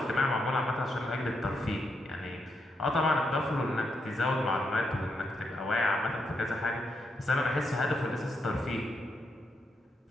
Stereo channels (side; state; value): both; normal; correlation 0.81